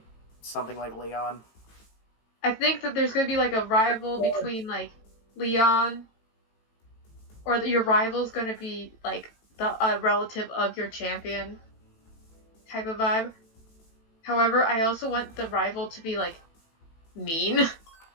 something like Leon? I think that there's gonna be like a rival between like Leon, or your rival's gonna be like the relative of your champion type of vibe. However, I also want the rival to be like mean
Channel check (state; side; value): late; right; 18 ms